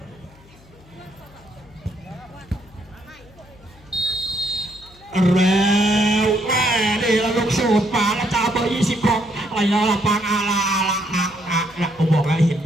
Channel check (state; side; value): noise; left; hum, 25 dB below the sound